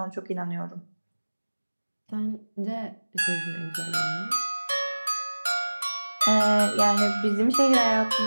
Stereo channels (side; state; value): both; inverted; correlation -1.00